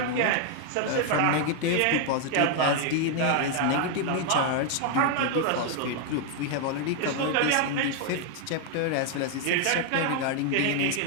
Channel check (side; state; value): both; different; correlation 0.00